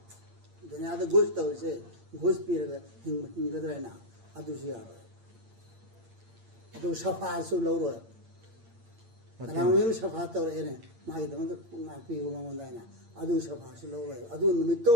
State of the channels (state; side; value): late; left; 8.8 ms